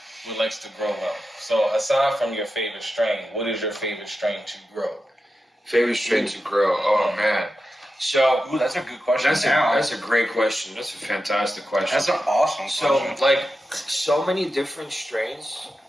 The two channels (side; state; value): both; normal; correlation 0.90